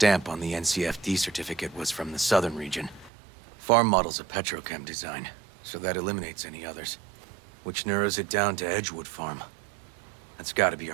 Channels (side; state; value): left; drops out; at 3.1 s